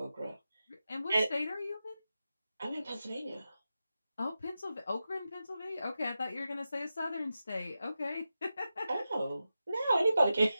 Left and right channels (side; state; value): both; inverted; correlation -0.91